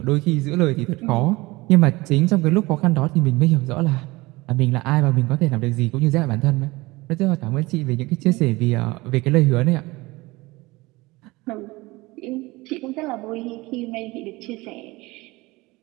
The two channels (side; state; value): left; quieter; 21.6 dB